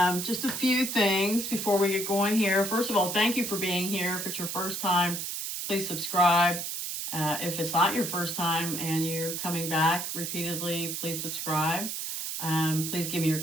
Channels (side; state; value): right; noise; hiss, 4 dB below the sound